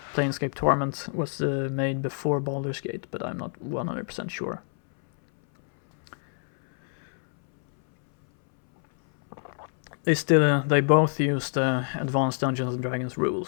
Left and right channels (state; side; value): silent; right; 61 dB below the other